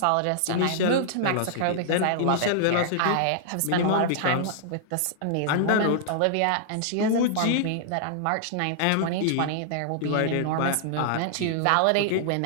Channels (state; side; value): different; both; correlation -0.01